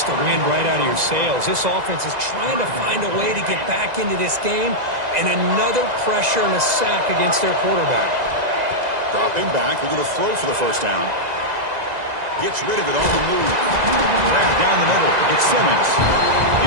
the wind right out of your sails. This offense is trying to find a way to get back into this game, and another pressure and a sack against their quarterback. Dropping back, looking to throw for the first down. Gets rid of it on the move. Grab down the middle. It's Simmons.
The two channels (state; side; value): late; left; 2.0 ms